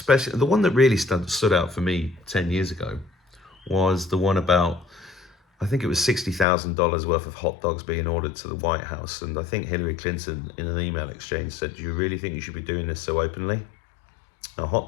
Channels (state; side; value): drops out; right; at 6.5 s